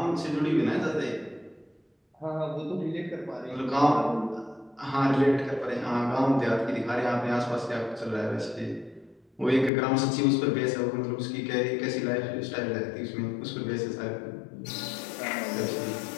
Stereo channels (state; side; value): drops out; right; at 9.7 s